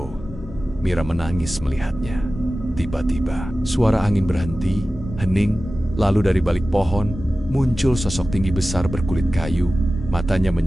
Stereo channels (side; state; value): both; normal; correlation 0.96